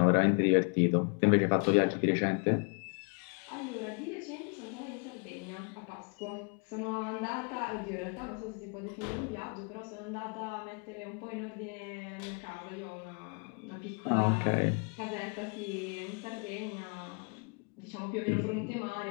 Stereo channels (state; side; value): quieter; right; 37.2 dB